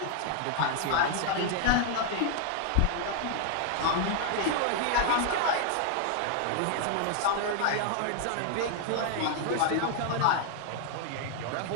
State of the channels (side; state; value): both; different; correlation 0.00